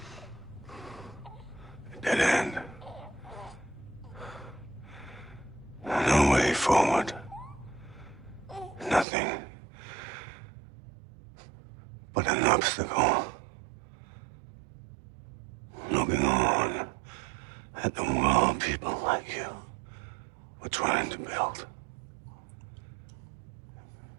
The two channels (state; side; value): drops out; left; at 9.1 s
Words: but an obstacle. Looking on at the world people like you were trying to build.